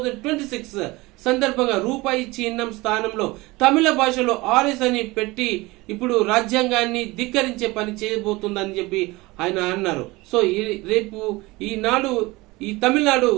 సందర్భంగా రూపాయి చిహ్నం స్థానంలో తమిళ భాషలో RS అని పెట్టి ఇప్పుడు రాజ్యాంగాన్ని ధిక్కరించే పని చేయబోతుందని చెప్పి ఆయన అన్నారు. సో రేపు ఈ తమిళనాడు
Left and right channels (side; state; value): left; quieter; 21.8 dB